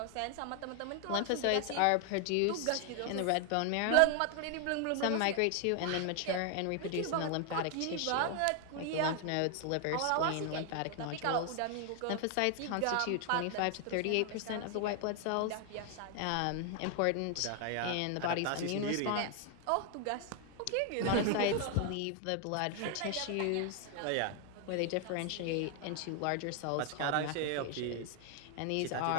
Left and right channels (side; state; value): both; different; correlation 0.00